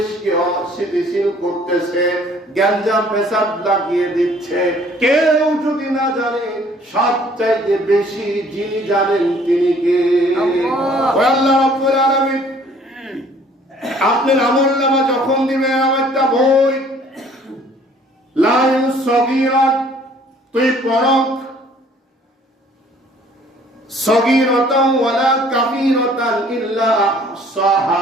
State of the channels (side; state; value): both; normal; correlation 0.57